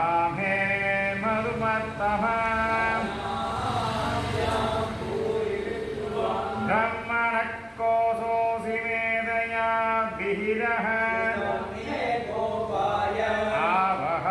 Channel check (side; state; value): both; identical; correlation 1.00